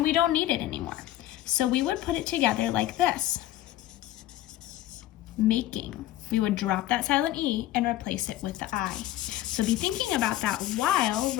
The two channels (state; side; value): quieter; right; 14.3 dB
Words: we don't need it anymore. So we would put it together like this. Making. We would drop that silent E and replace it with the I. So be thinking about that while